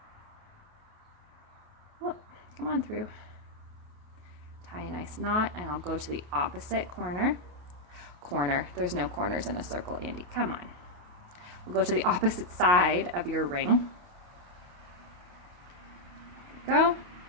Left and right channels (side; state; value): left; late; 28 ms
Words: Oh, come on through. Tie a nice knot, and I'll go to the opposite corner. There's no corners in a circle, Andy, come on. We'll go to the opposite side of your ring. Go.